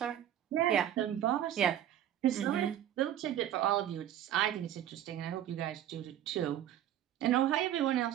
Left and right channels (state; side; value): quieter; left; 11.3 dB